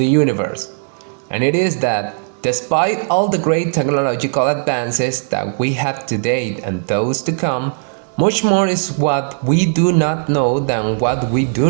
universe. And it is that, despite all the great technological advances that we have to date and those to come, much more is what we do not know than what we do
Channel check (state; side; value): silent; left; digital silence